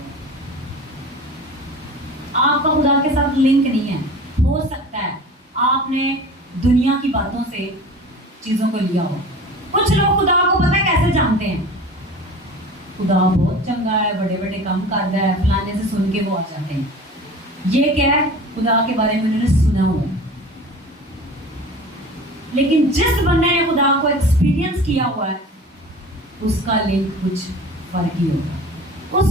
آپ کا خدا کے ساتھ لنک نہیں ہے. ہو سکتا ہے آپ نے دنیا کی باتوں سے چیزوں کو لیا ہو. کچھ لوگ خدا کو پتہ ہے کیسے جانتے ہیں؟ خدا بہت چنگا ہے، بڑے بڑے کام کرتا ہے، فلانے سے سن کے وہ آ جاتے ہیں. یہ کیا ہے؟ خدا کے بارے میں انہوں نے سنا ہوا ہے. لیکن جس بندے نے خدا کو ایکسپیرینس کیا ہوا ہے اس کا لنک کچھ فرق ہی ہوگا،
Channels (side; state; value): both; normal; correlation 0.39